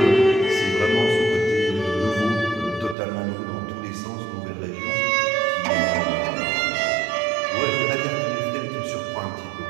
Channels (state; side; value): drops out; left; at 3.0 s